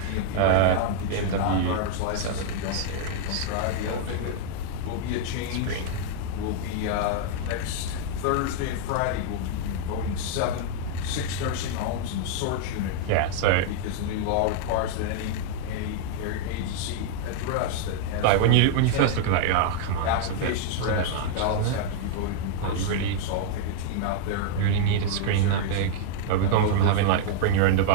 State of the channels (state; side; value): different; both; correlation -0.01